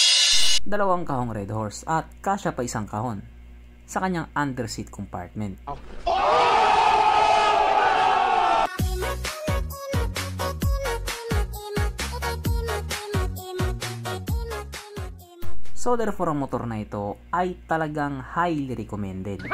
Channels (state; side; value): identical; both; correlation 1.00